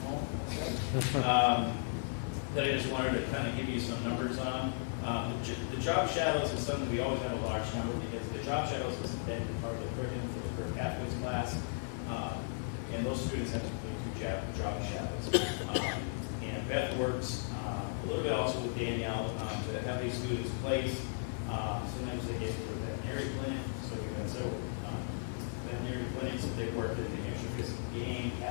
home. That I just wanted to kind of give you some numbers on. The job shadows is something we always have a large number because the job shadows is embedded part of the curriculum for the career pathways class, and those students have to complete 2 job shadows. And Beth works a little bit also with Danielle to have these students placed. Sometimes they get to a veterinary clinic, so we've had several veterinary clinics that they've worked in the New Hampshire Physical Game,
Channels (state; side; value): silent; right; digital silence